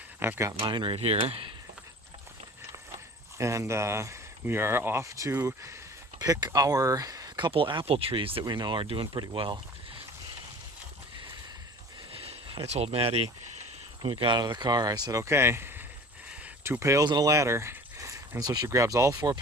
I've got mine right here. And we are off to pick our couple apple trees that we know are doing pretty well. I told Maddie when we got out of the car, I said, okay, 2 pails and a ladder. And so she grabs all 4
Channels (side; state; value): both; normal; correlation 0.43